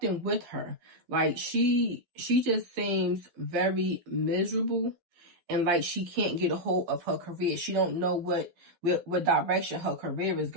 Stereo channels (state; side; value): late; left; 12 ms